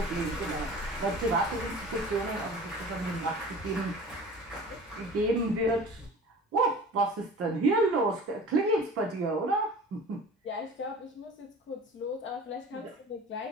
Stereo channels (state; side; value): normal; both; correlation 0.41